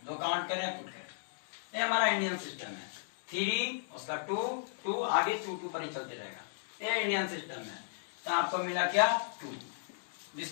2 काउंट करें पुट करें। ये हमारा इंडियन सिस्टम है, 3 उसका 2 आगे 2 पर ही चलते रहेगा। ये इंडियन सिस्टम है। तो आपको मिला क्या 2,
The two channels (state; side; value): silent; right; digital silence